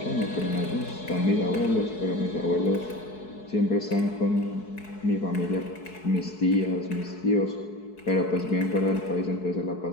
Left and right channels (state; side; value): late; right; 4.6 ms